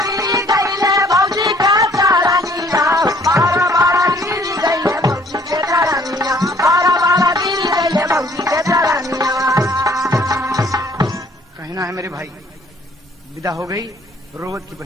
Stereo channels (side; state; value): both; normal; correlation 0.59